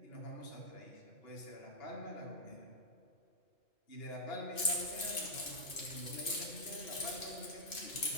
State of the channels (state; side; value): late; right; 2.6 ms